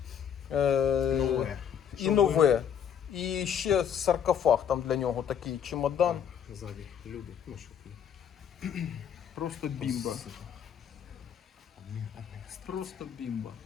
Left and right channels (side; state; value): right; quieter; 8.4 dB